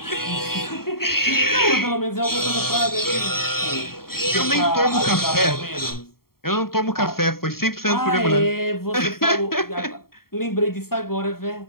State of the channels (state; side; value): late; right; 0.93 ms